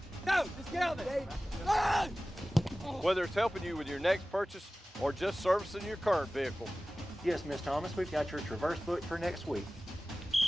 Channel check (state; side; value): normal; both; correlation 0.97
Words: Go, let's get out there. whether it's helping you with your next purchase or just servicing your current vehicle. Yes, Miss Thomas, we've got your Traverse booked for next week.